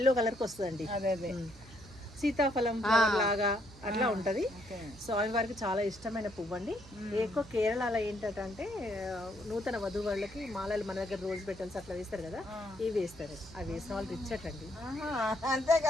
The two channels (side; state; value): right; noise; hum, 20 dB below the sound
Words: కలర్కి వస్తుందండి. అదే సీతాఫలం ఫ్లవర్ లాగా అట్లా ఉంటది. స్వామివారికి చాలా ఇష్టమైన పువ్వు అండి. ఎక్కువ కేరళలో ఏంటంటే నూతన వధువులకి మాలలు మన దగ్గర రోజు పెట్టాల్సి అట్లా వేస్తారు కదా, ఇవి వేస్తారు. అవి వేసిన వాళ్ళు రిచ్ అండి. అంతే